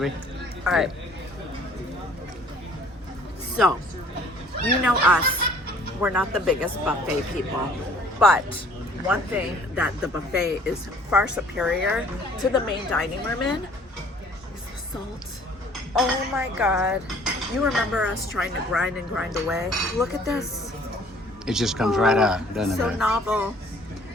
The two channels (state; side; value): normal; both; correlation 0.55